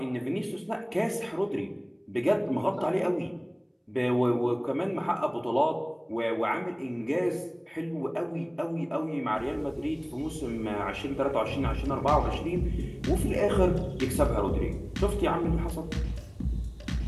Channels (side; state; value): both; identical; correlation 1.00